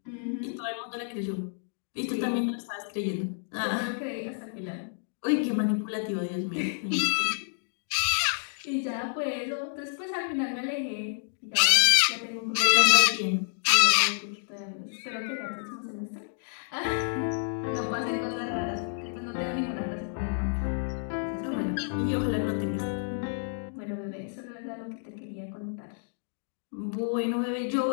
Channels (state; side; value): silent; right; digital silence